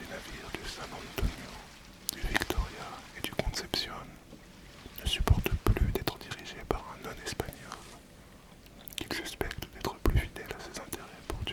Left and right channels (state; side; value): identical; both; correlation 1.00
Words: navires du San Antonio, du Victoria et du Concepción, ne supportent plus d'être dirigés par un non-espagnol, qu'ils suspectent d'être plus fidèle à ses intérêts